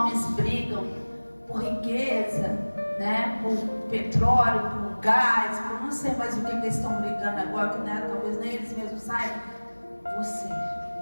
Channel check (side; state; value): both; inverted; correlation -1.00